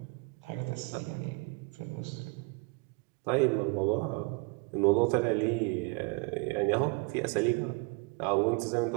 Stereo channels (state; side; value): quieter; left; 31.1 dB